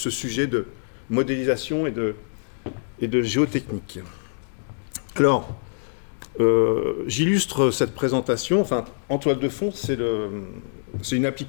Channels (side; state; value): right; silent; digital silence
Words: sujet de modélisation et de géotechnique. Alors, j'illustre cette présentation. Enfin, en toile de fond, c'est une